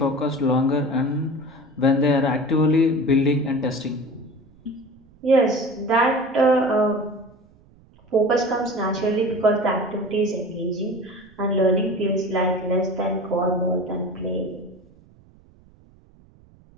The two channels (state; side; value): noise; right; rumble, 28 dB below the sound